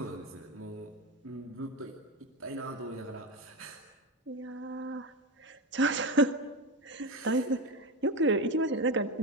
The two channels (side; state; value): both; normal; correlation 0.16